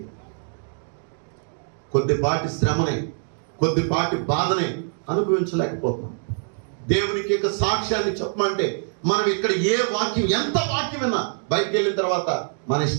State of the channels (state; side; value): silent; left; digital silence